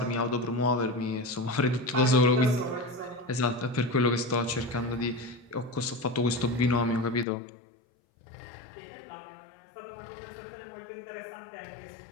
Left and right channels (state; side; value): drops out; right; at 7.2 s